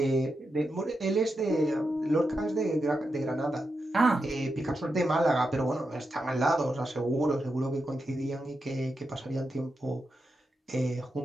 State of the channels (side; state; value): both; normal; correlation 0.87